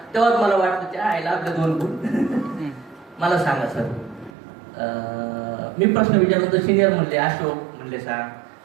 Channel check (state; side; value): drops out; left; at 4.3 s